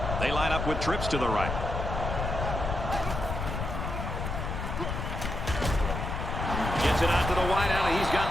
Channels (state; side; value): noise; left; rumble, 3 dB below the sound